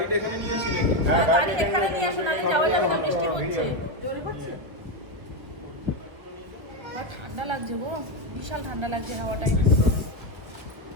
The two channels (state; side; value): late; left; 1.5 ms